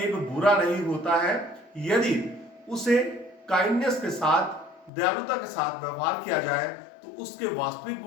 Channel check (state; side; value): drops out; right; at 4.9 s